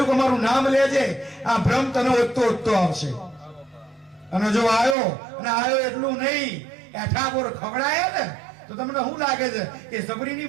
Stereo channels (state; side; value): drops out; left; at 5.0 s